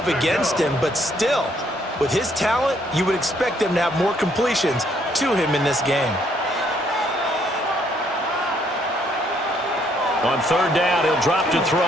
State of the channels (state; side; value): normal; both; correlation 0.69